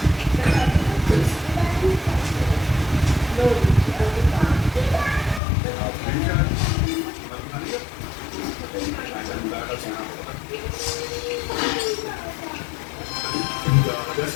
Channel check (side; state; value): right; drops out; at 5.4 s